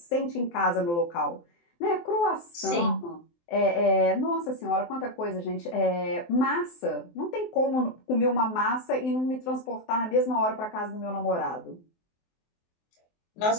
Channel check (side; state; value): right; late; 23 ms